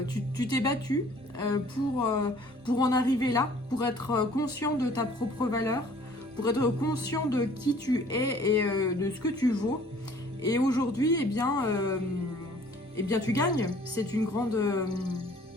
tu t'es battu pour en arriver là, pour être conscient de ta propre valeur, pour être conscient de qui tu es et de ce que tu vaux. Et aujourd'hui, eh bien, tu gagnes. C'est une grande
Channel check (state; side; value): normal; both; correlation 0.54